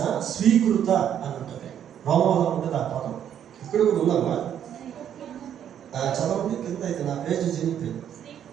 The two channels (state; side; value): quieter; left; 9.6 dB